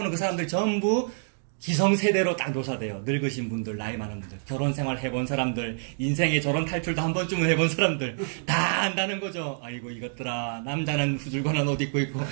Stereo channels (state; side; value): silent; left; digital silence